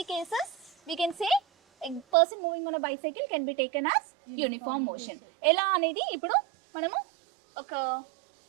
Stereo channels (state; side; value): drops out; left; at 2.1 s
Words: cases we can say a person moving on a bicycle can be taken as uniform motion. ఎలా అనేది ఇప్పుడు మనము ఒక